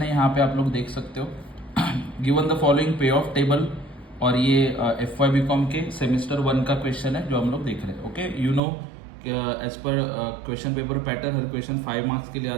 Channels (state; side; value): drops out; left; at 8.6 s